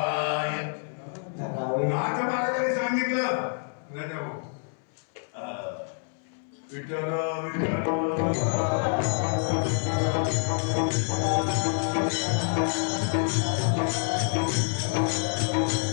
नाथ महाराजांनी सांगितलं. राजा भाऊ विठ्ठल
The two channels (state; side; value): silent; right; 60 dB below the other